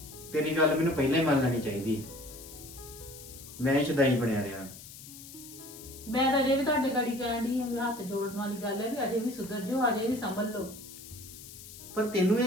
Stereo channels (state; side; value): noise; left; hiss, 15 dB below the sound